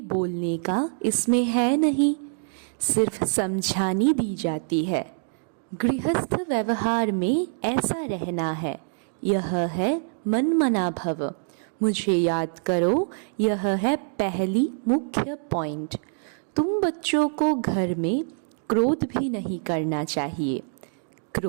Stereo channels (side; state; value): left; silent; digital silence